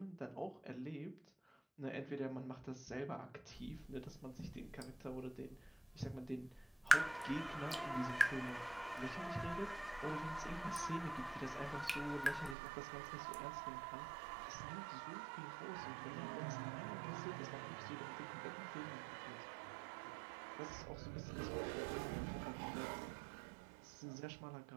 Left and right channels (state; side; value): drops out; left; at 12.6 s